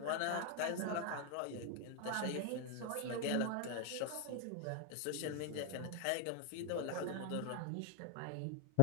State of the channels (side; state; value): both; different; correlation 0.01